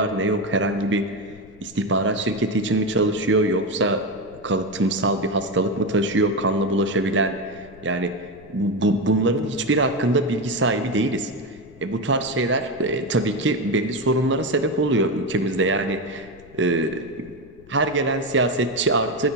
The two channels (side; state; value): left; noise; rumble, 23 dB below the sound